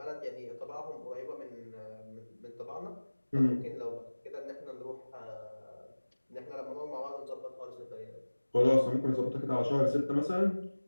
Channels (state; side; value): inverted; both; correlation -1.00